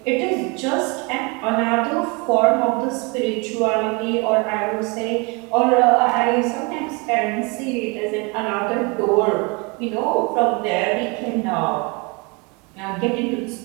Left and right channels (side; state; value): left; quieter; 29.6 dB